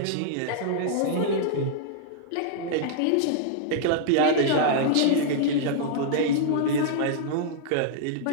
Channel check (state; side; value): different; both; correlation -0.01